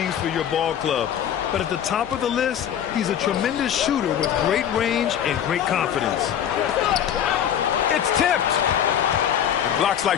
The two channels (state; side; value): quieter; right; 9.5 dB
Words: for your ball club. But at the top of the list, he's a tremendous shooter with great range and great confidence. It's tipped. Blocks